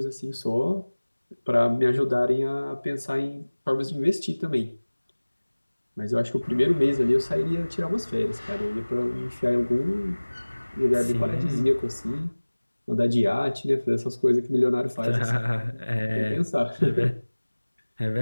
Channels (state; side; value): inverted; both; correlation -1.00